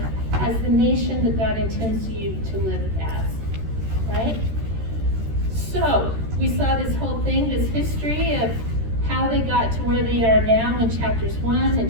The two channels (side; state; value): left; late; 13 ms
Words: as the nation that God intends you to live as, right? So, we saw this whole thing, this history of how they got to where they are now in chapters 1